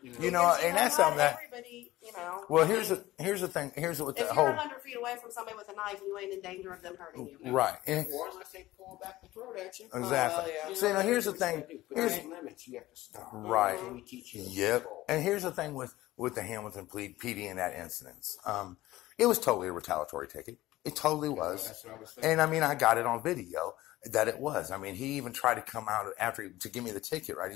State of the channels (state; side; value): quieter; right; 16.9 dB